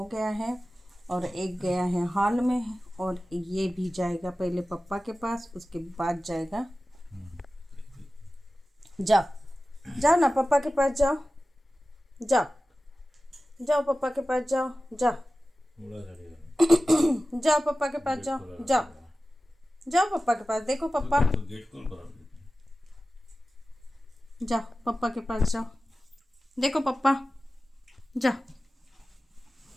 गया है और एक गया है हॉल में और ये भी जाएगा पहले पापा के पास, उसके बाद जाएगा। जाओ जाओ ना, पापा के पास जाओ। जाओ जाओ पापा के पास जाओ। जाओ जाओ पापा के पास जाओ। जाओ जाओ पापा के पास। देखो पापा, जाओ पापा के पास जाओ। देखो पापा, जाओ।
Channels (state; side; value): normal; both; correlation 0.96